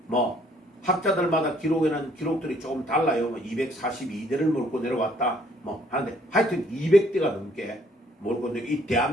뭐 학자들마다 기록에는 기록들이 조금 달라요. 뭐 242대를 몰고 내려왔다 뭐 하는데, 하여튼 200대가 넘게 몰고 내려. 이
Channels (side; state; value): both; normal; correlation 0.63